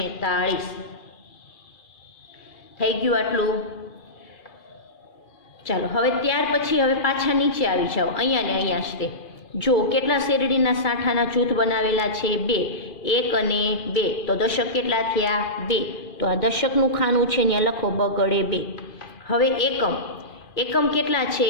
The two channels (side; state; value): right; late; 2.4 ms